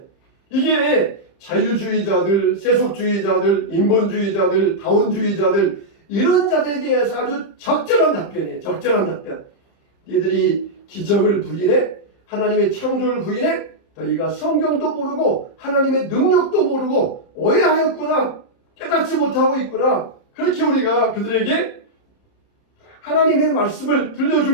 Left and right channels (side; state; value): right; late; 30 ms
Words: 이게 자유주의자들, 세속주의자들, 인본주의자들, 다원주의자들 이런 자들에 대해서 아주 적절한 답변이에요. 적절한 답변. 니들이 기적을 부인해? 하나님의 창조를 부인해? 너희가 성경도 모르고 하나님의 능력도 모르고 오해하였구나. 깨닫지 못하고 있구나. 그렇게 우리가 그들에게 하나님의 말씀을